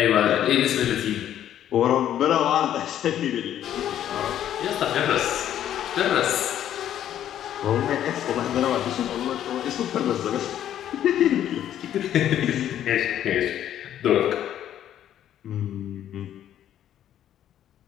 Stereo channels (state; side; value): quieter; right; 11.0 dB